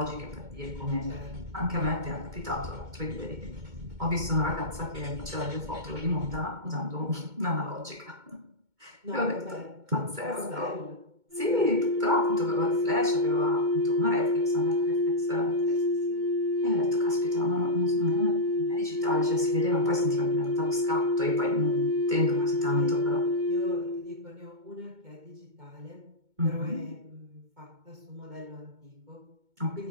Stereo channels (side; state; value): left; late; 2.2 ms